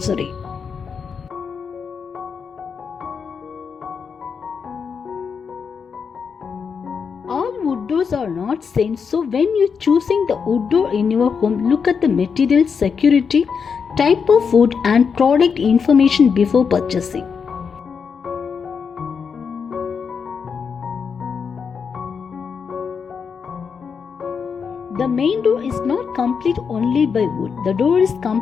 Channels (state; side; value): quieter; right; 6.1 dB